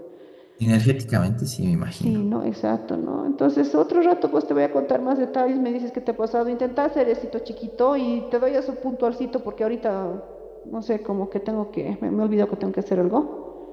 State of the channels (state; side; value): identical; both; correlation 1.00